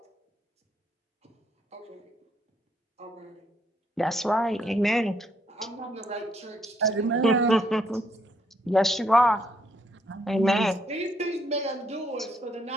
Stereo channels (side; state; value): both; normal; correlation 0.72